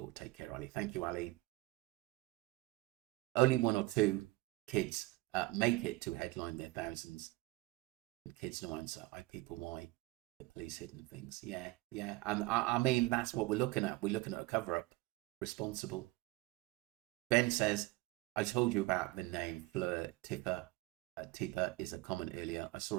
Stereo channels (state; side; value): quieter; left; 20.7 dB